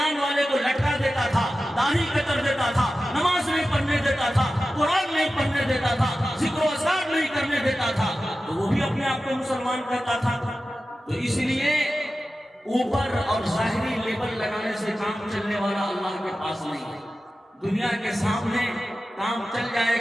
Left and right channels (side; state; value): both; normal; correlation 0.94